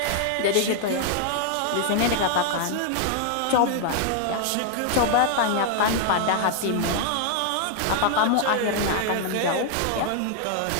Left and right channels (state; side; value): different; both; correlation 0.00